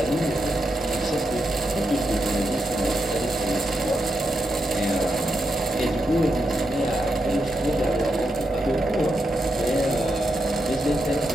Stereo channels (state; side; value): normal; both; correlation 0.84